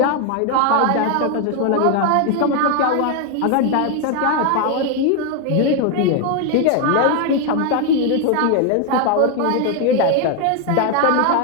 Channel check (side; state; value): both; different; correlation 0.01